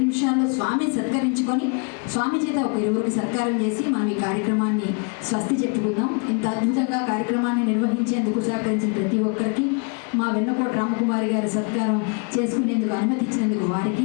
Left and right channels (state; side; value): quieter; right; 36.4 dB